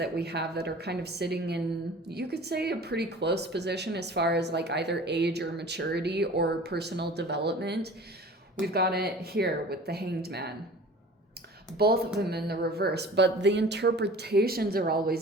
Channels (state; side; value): normal; both; correlation 0.43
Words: we have that are kind of sitting in, you could say, a pretty close position as far as like either age or maturity or personal development, we've got it here with the Hanged Man. Both of them in the reverse, but the interpretations are